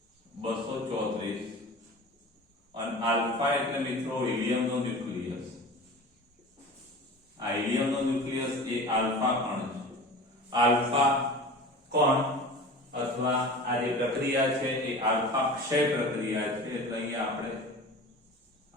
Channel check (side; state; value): both; normal; correlation 0.36